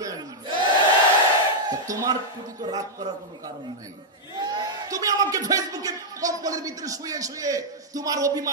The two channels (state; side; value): normal; both; correlation -0.05